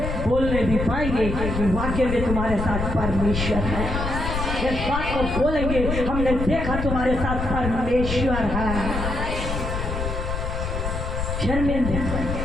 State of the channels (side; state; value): left; noise; rumble, 3 dB below the sound